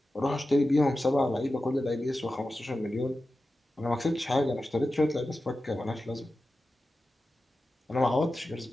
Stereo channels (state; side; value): normal; both; correlation 0.93